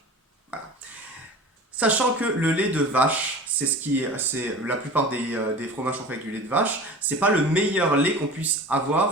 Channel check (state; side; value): normal; both; correlation 0.37